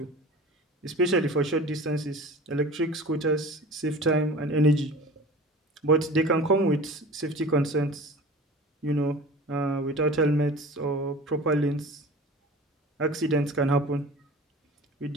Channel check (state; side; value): normal; both; correlation 0.39